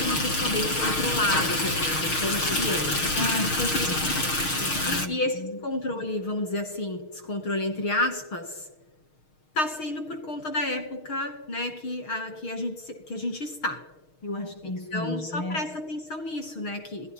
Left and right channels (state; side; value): late; right; 6.5 ms